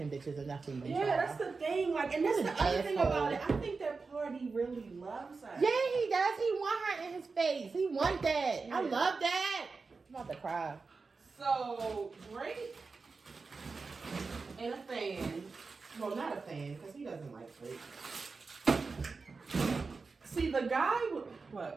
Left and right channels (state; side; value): quieter; left; 4.4 dB